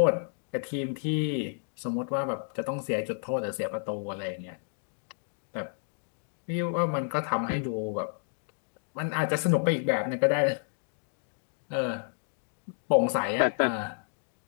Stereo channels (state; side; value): silent; right; digital silence